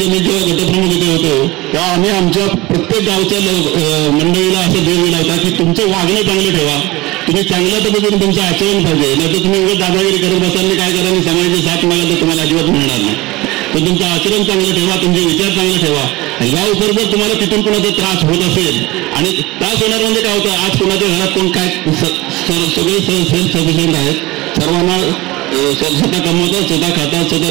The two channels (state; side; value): quieter; left; 20.7 dB